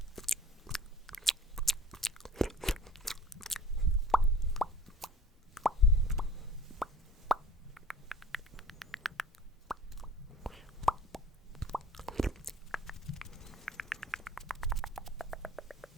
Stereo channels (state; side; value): normal; both; correlation 0.48